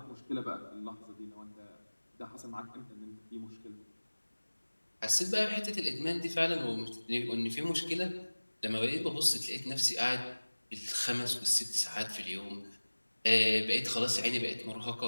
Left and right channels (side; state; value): both; inverted; correlation -1.00